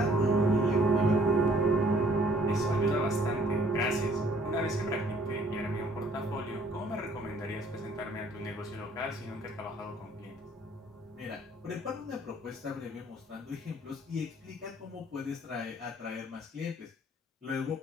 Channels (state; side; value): normal; both; correlation 0.60